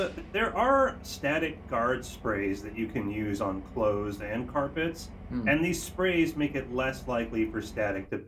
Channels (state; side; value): identical; both; correlation 1.00